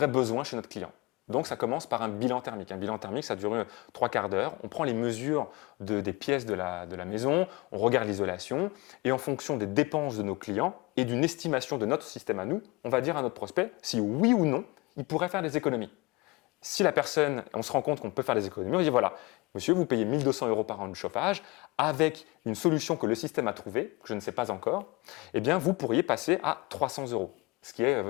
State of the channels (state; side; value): quieter; right; 24.0 dB